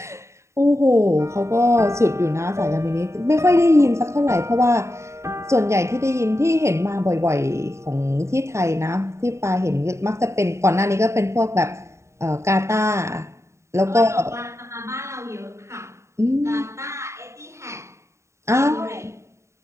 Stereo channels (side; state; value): left; late; 0.14 ms